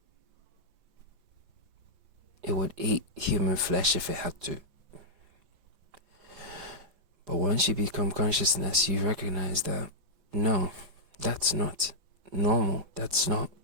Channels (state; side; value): late; left; 5.0 ms